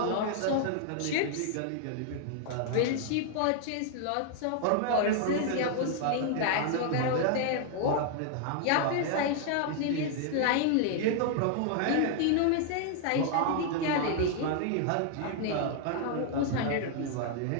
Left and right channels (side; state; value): both; different; correlation 0.00